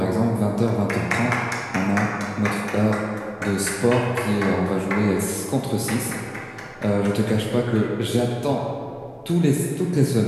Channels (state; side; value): identical; both; correlation 1.00